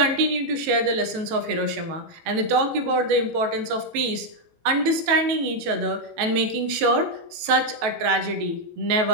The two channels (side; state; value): left; late; 18 ms